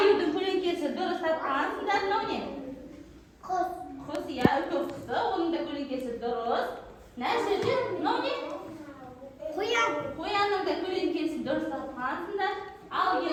көлеңкесі дұрыс тапқансыңдар. Мынау не? Құс, иә, үлкен құсы. Оның да көлеңкесі дұрыс. Мына жерде мынау не? Қоянның да көлеңкесі дұрыс тапқансыңдар. Ал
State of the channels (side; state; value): both; identical; correlation 1.00